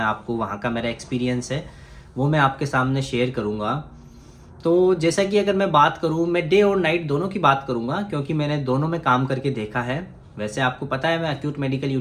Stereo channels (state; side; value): identical; both; correlation 1.00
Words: आपको वहाँ का मेरा एक्सपीरियंस है वो मैं आपके सामने शेयर करूँगा। तो जैसा कि अगर मैं बात करूँ, मैं डे और नाइट दोनों की बात करूँगा, क्योंकि मैंने दोनों में काम करके देखा है। वैसे आपको पता है मैं एक्यूट मेडिकल